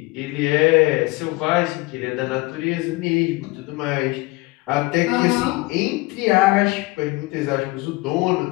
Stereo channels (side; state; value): right; quieter; 22.7 dB